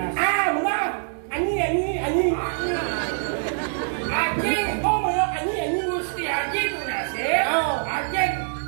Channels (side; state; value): left; silent; 62 dB below the other